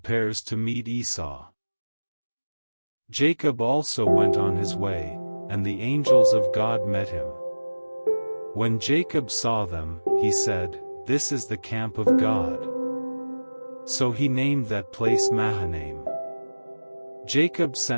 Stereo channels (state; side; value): inverted; both; correlation -1.00